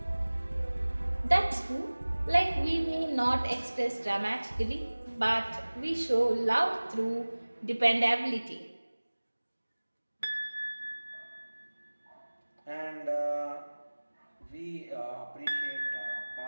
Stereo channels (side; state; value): both; inverted; correlation -1.00